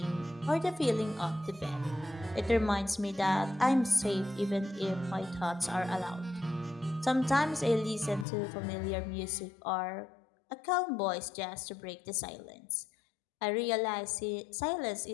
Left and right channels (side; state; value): right; drops out; at 8.2 s